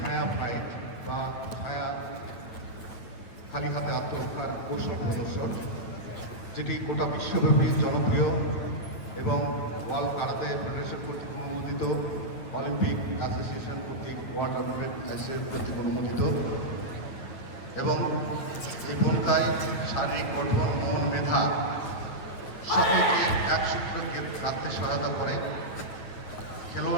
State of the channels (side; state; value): right; late; 9.4 ms